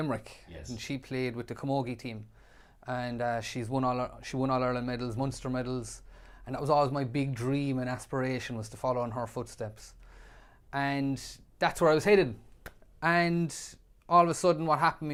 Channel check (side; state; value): both; identical; correlation 1.00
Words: Yes. And she played with the Camogie team. And she won All-Ireland medals, Munster medals. And that was always my big dream and aspiration, was to follow in her footsteps. And that's where I was headed. And all of a sudden what happened to